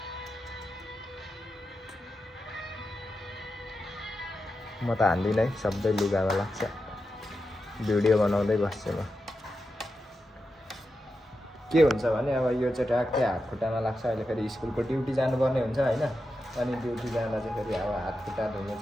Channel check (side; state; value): both; normal; correlation 0.89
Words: म त हान्दिनँ है, सबै लुगामा लाग्छ। भिडियो बनाउँदै बस्छु म। के हुन्छ भने अब यो चाहिँ ट्याक्कै हात खुट्टामा लाग्छ। अहिले फेरि स्कुलको ड्युटी जानुपर्ने हुन्छ होइन। अनि ड्युटी जाँदा चाहिँ फेरि अब हात खुट्टा धुनु